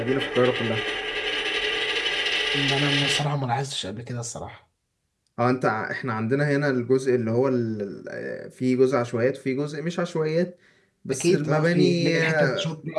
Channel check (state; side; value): identical; both; correlation 1.00